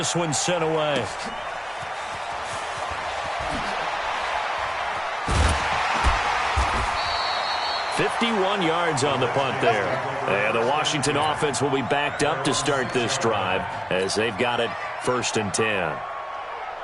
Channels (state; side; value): identical; both; correlation 1.00